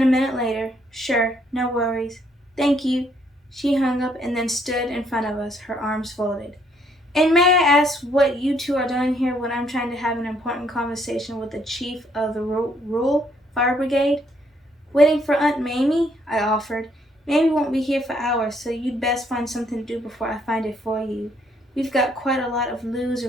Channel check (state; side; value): normal; both; correlation 0.69